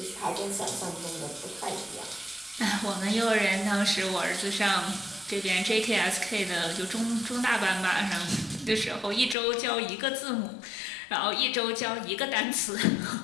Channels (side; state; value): right; drops out; at 9.3 s